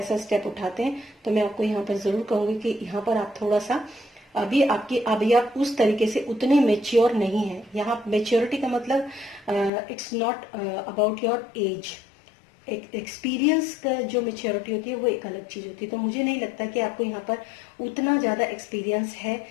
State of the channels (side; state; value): right; drops out; at 9.7 s